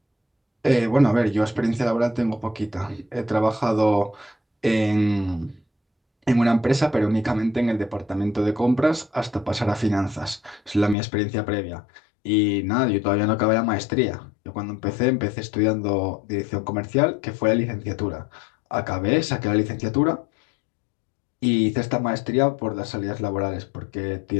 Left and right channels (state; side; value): drops out; right; at 11.0 s